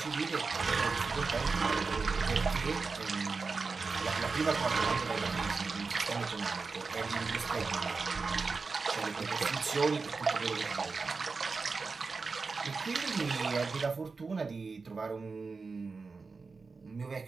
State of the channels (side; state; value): left; quieter; 4.4 dB